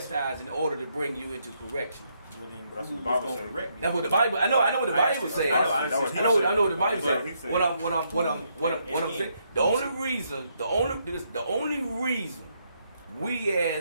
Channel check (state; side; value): inverted; both; correlation -0.75